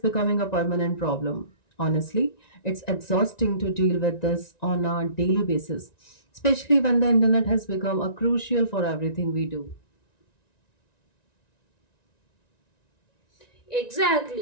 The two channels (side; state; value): right; late; 1.9 ms